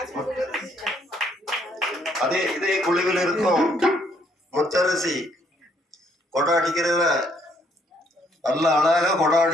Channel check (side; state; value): both; normal; correlation 0.68